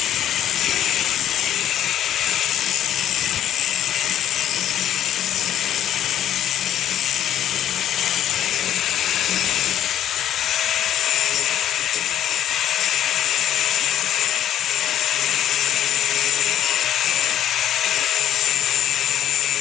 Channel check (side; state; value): right; quieter; 11.0 dB